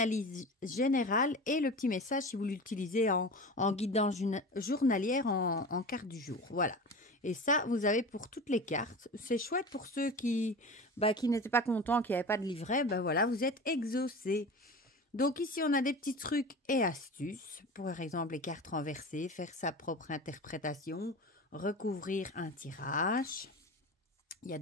générale et le petit message si vous l'utilisez en guidance journalière en carte du jour. Voilà. Et ça, vous avez pour toutes les cartes. C'est chouette pour ceux qui n'étaient pas contents, qui n'avaient pas de livret. Voilà, vous êtes exaucés. Donc ici, on a des petits trucs et astuces. Pour exemple, les cartes renversées, faire sa propre interprétation, recouvrir un tirage. Il y a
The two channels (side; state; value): both; normal; correlation 0.32